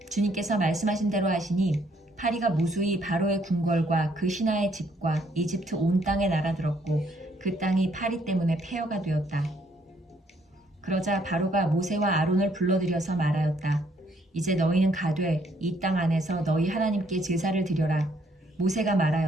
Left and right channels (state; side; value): normal; both; correlation 0.68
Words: 주님께서 말씀하신 대로 하시니 파리가 무수히 바로의 궁궐과 그 신하의 집과 이집트 온 땅에 날아들었고 그 땅이 파리 때문에 폐허가 되었다. 그러자 바로가 모세와 아론을 불러들여서 말하였다. 이제 너희는 가되 이 땅 안에서 너희 하나님께 제사를 드려라. 모세가